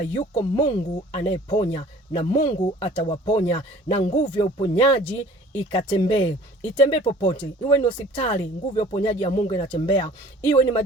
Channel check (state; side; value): normal; both; correlation 0.49